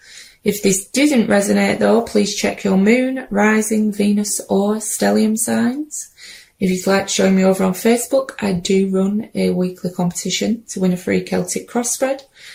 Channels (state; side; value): identical; both; correlation 1.00